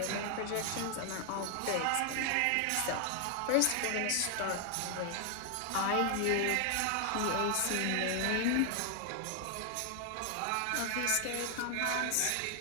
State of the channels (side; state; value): both; different; correlation 0.00